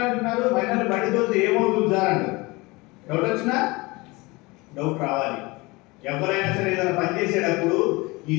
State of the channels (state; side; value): quieter; right; 23.7 dB